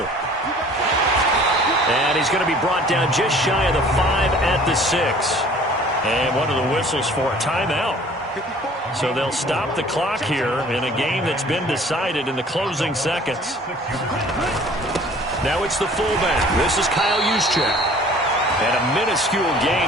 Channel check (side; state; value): both; normal; correlation 0.51